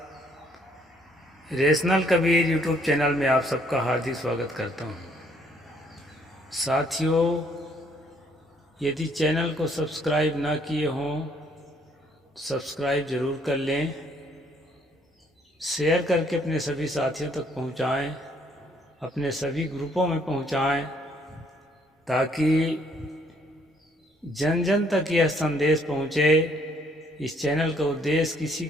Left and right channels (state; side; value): normal; both; correlation 0.66